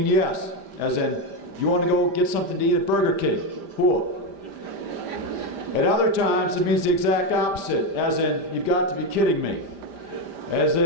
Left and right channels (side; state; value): left; late; 5.0 ms